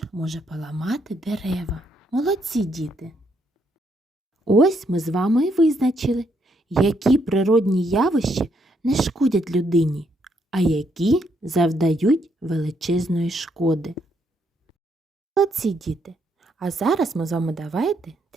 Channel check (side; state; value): both; normal; correlation 0.74